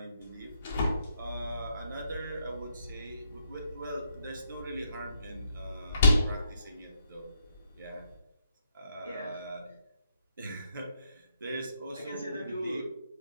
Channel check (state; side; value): inverted; both; correlation -0.76